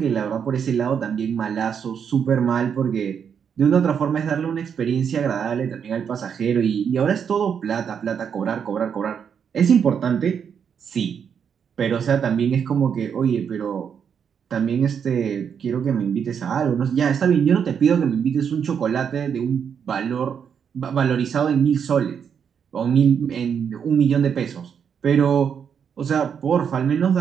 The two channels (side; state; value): left; quieter; 7.4 dB